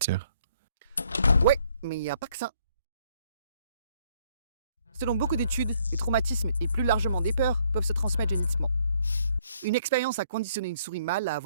Ouais, mais il n'y a pas que ça. Selon beaucoup d'études, les traumatismes et plus largement des peurs peuvent se transmettre génétiquement. Une expérience a conditionné une souris mâle à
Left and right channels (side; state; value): both; inverted; correlation -0.65